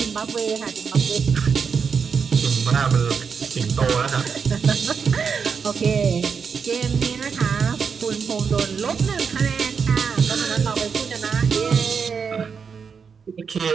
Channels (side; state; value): left; quieter; 6.1 dB